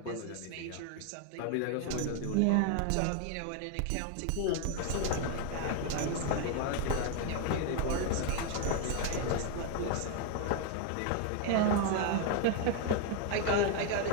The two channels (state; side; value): different; both; correlation 0.01